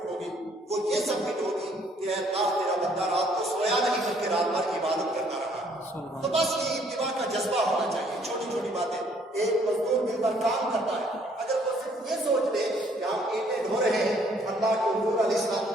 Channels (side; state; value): both; normal; correlation 0.64